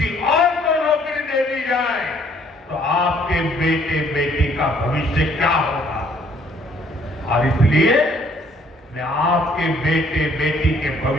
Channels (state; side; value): normal; both; correlation 0.63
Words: और को नौकरी दे दी जाए तो आपके बेटे बेटी का भविष्य क्या होगा। और इसलिए मैं आपके बेटे बेटी के